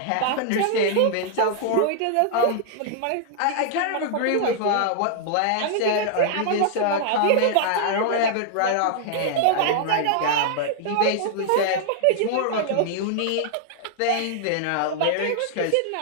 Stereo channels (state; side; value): different; both; correlation -0.01